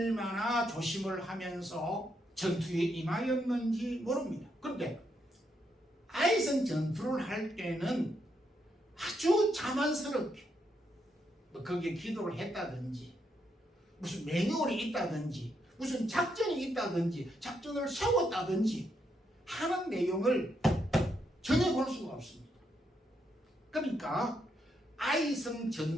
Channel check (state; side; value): normal; both; correlation 0.79